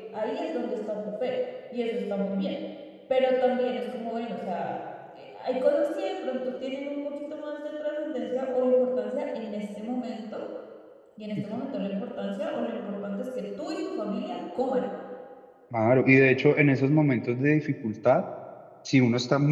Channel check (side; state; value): both; identical; correlation 1.00